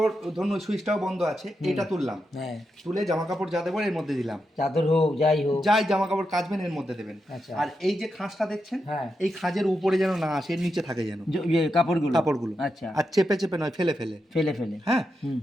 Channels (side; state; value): both; normal; correlation 0.86